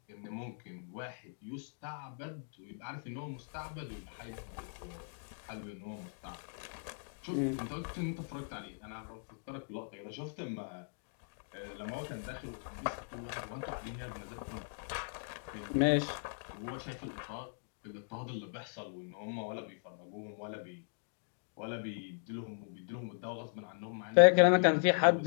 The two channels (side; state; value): right; silent; digital silence